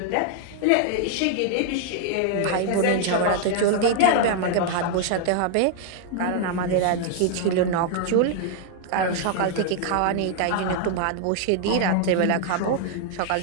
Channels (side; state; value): both; different; correlation 0.00